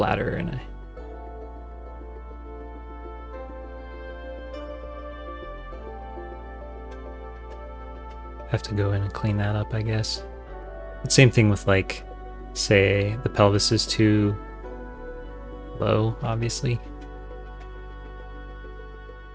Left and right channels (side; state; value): both; identical; correlation 1.00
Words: and I have to go in and clean that up, I guess. But same thing with like, say the pelvis is too low, obviously.